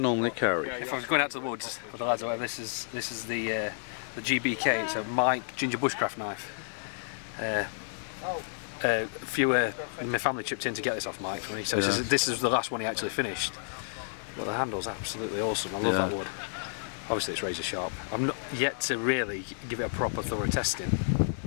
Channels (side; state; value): right; silent; digital silence